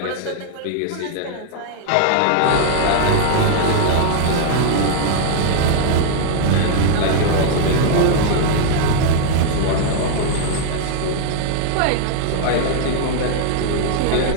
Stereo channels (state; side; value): different; both; correlation -0.01